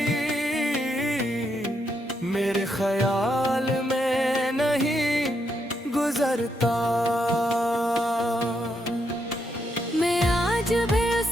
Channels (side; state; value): both; normal; correlation 0.79